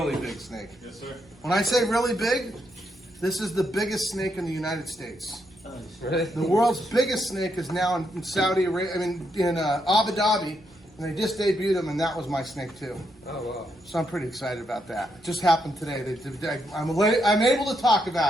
big snake. Yes, sir. When I say really big, this is the biggest snake in the United States. Really? The world's biggest snake is now in Saudi Arabia. I mean, in Abu Dhabi, and they just debuted him, and that was my snake too. Oh wow. So I'm pretty excited about that. It just happened today. I'm able to talk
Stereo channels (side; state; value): both; normal; correlation 0.79